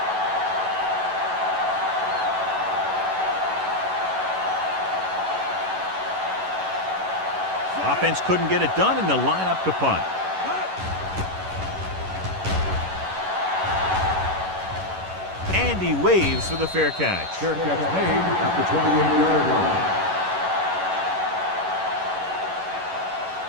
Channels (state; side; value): late; left; 11 ms